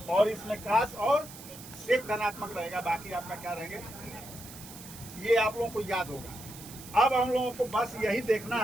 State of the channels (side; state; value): right; noise; hiss, 15 dB below the sound